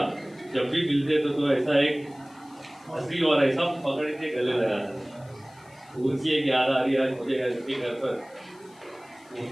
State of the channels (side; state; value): left; noise; hiss, 28 dB below the sound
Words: जब भी मिलते तो ऐसा एक हंसी और ऐसा पकड़ के गले लगाते। उनकी एक याद आ रही है आज मुझे उनके घर पर,